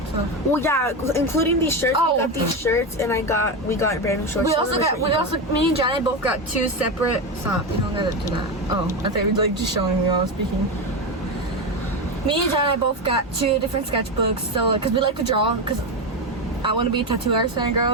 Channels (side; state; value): both; normal; correlation 0.15